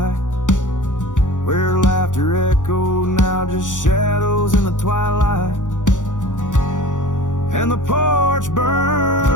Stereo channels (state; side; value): late; right; 0.87 ms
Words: where laughter echoed, now just shadows in the twilight. And the porch